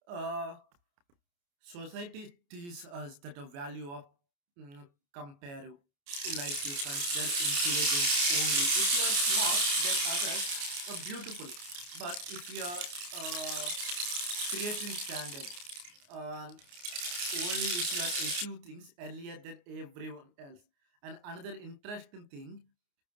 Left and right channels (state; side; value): late; left; 29 ms